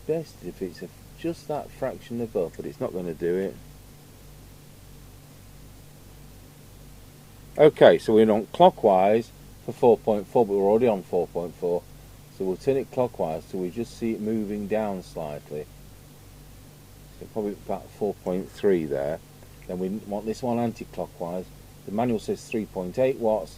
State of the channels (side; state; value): both; identical; correlation 1.00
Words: Best if it's just that fraction above, but it's not going to do it. Okay, so we're on clockwise for 4.4, but we're already on 4.4. So we'll turn it clockwise till we just see it moving down slightly. So probably about 4.3 there. Then we want this one anti-clockwise. The manual says 3.8 watts,